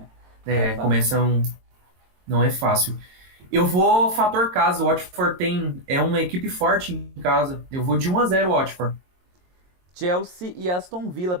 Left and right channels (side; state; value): left; late; 22 ms